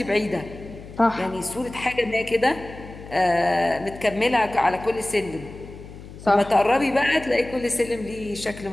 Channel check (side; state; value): left; noise; hum, 15 dB below the sound